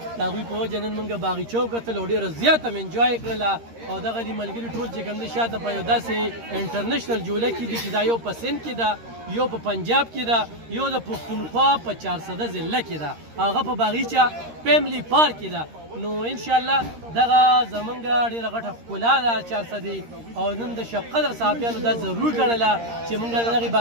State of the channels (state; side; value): late; left; 13 ms